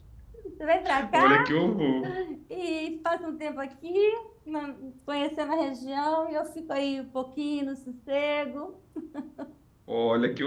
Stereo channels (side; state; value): both; identical; correlation 1.00